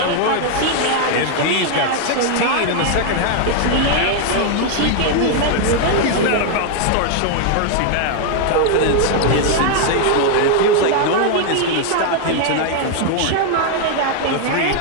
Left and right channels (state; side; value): different; both; correlation 0.00